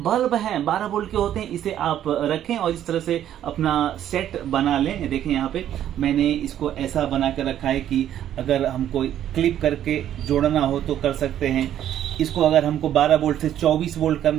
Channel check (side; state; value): left; quieter; 11.1 dB